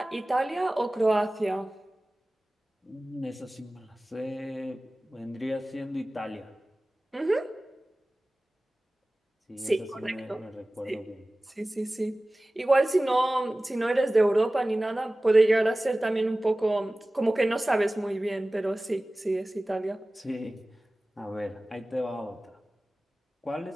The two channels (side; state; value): both; normal; correlation 0.98